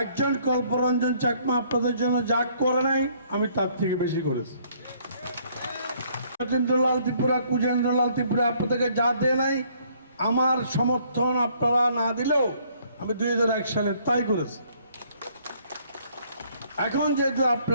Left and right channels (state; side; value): inverted; both; correlation -0.63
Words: একজন কল্পরঞ্জন চাকমা আপনাদের জন্য যা করে নাই, আমি তার থেকে বেশি করেছি। সত্যেন্দ্রলাল ত্রিপুরা, কুজেন্দ্রলাল ত্রিপুরা আপনাদেরকে যা দেয় নাই, আমার সমর্থন আপনারা না দিলেও আমি 2001 সালে তাই করেছি। এখন যেহেতু